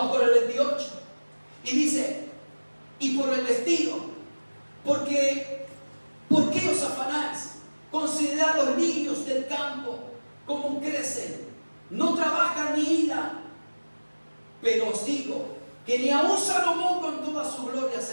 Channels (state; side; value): inverted; both; correlation -1.00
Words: con el 28. Y dice, y por el vestido, ¿por qué os afanáis? Considerad los lirios del campo, cómo crecen, no trabajan ni hilan. Pero os digo que ni aun Salomón con toda su gloria